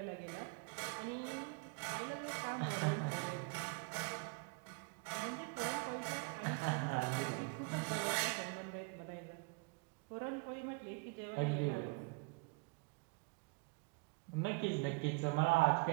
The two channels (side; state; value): left; quieter; 30.4 dB